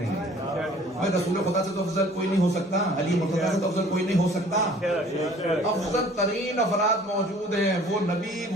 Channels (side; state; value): both; normal; correlation 0.52